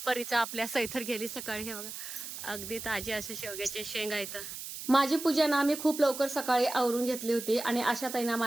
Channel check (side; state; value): right; noise; hiss, 9 dB below the sound